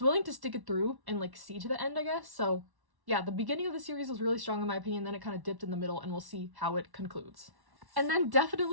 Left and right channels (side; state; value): left; late; 1.1 ms